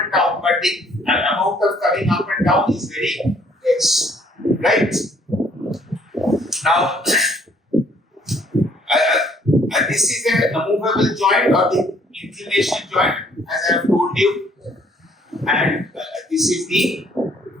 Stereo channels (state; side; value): normal; both; correlation 0.62